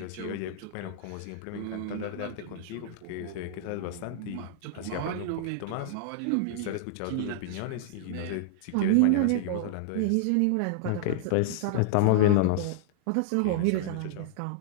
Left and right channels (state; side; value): different; both; correlation -0.01